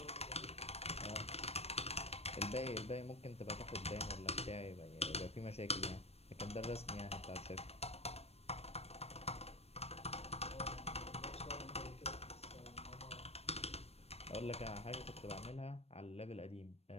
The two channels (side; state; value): right; late; 0.30 ms